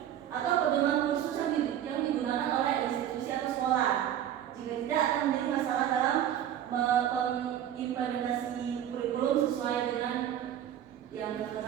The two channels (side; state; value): left; quieter; 10.7 dB